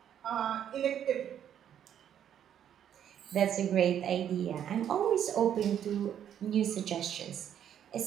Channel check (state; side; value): quieter; left; 9.7 dB